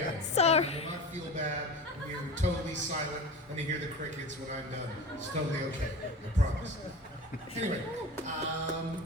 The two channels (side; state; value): both; normal; correlation 0.32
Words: end. Sorry. You will not feel bad when you're totally silent and you hear the crickets when I'm done. It's totally okay. I promise. Anyway,